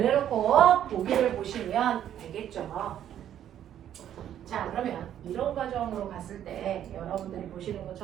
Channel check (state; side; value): quieter; left; 10.6 dB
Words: 보기를 보시면 되겠죠. 자, 그러면 이런 과정으로 갔을 때 여러분들이 보시는